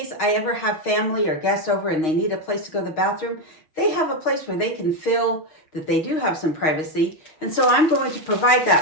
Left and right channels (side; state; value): right; late; 6.4 ms